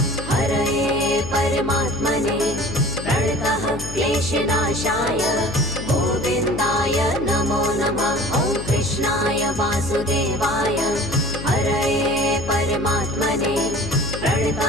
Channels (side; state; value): left; noise; hum, 9 dB below the sound